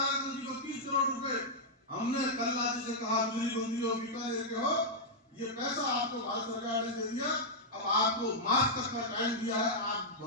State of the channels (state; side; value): normal; both; correlation -0.07